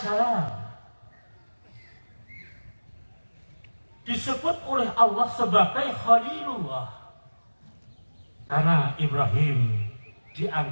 disebut oleh Allah sebagai Khalilullah karena Ibrahim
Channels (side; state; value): both; inverted; correlation -1.00